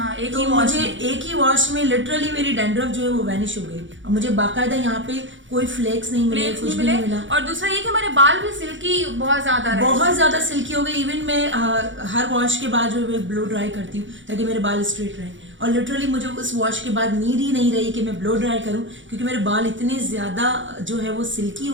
तो मुझे एक ही वॉश में लिटरली मेरी डैंड्रफ जो है वो वैनिश हो गई और मुझे बाकायदा यहाँ पे कोई फ्लेक्स नहीं मिले, कुछ भी नहीं मिला। और दूसरा ये कि हमारे बाल भी सिल्की बहुत ज्यादा सिल्की हो गई। इवन मैं हर वॉश के बाद जो है ब्लो ड्राई करती हूँ ताकि मेरे बाल स्ट्रेट रहें, और लिटरली मुझे उस वॉश के बाद नीड ही नहीं रही कि मैं ब्लो ड्राई करूं क्योंकि मेरे बाल इतने ज्यादा जो है वो सिल्की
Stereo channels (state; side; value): late; left; 0.55 ms